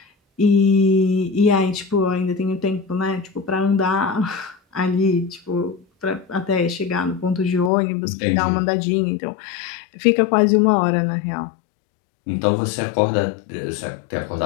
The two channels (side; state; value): right; drops out; at 7.7 s